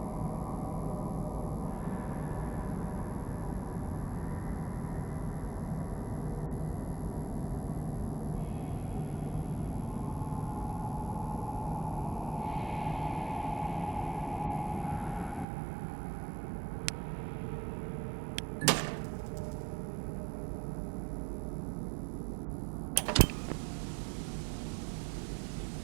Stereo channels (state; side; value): drops out; left; at 15.5 s